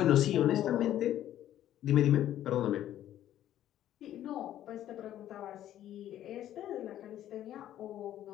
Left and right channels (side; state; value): right; quieter; 12.1 dB